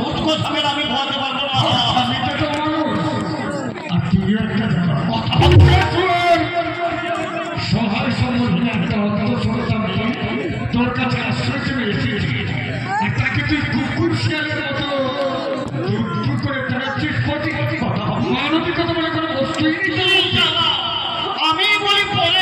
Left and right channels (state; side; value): identical; both; correlation 1.00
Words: হুট কথা আমি বলতে পারবো না। স্বামীটা তো মানুষ, আর তুইও একটা কথা সহায় সম্বন্ধে একটা অন্তঃসত্ত্বা মেয়ে তোর কাছে আশ্রয় চেয়ে এসেছি, আর তাকে তুই কুকুর শিয়ালের মতো দূর করে তাড়াচ্ছিস। মানবিকতা বলে কোনো বস্তুই নেই। আমি বলি